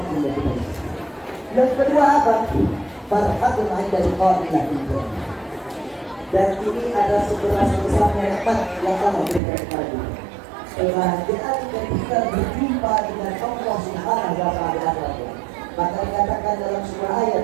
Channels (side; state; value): left; drops out; at 9.4 s